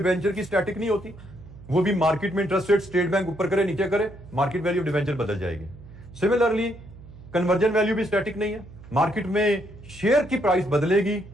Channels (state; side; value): noise; right; hum, 18 dB below the sound